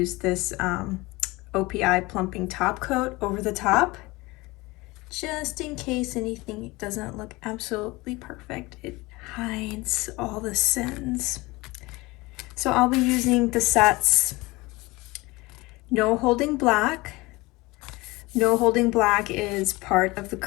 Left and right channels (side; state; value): right; quieter; 22.1 dB